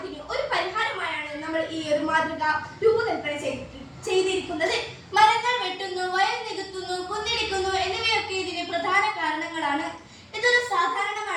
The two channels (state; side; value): identical; both; correlation 1.00